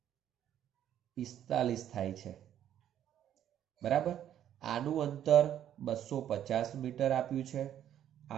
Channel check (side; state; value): left; quieter; 10.7 dB